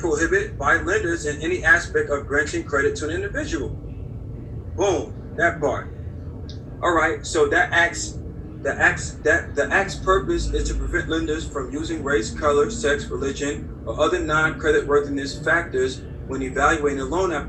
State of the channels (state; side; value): identical; both; correlation 1.00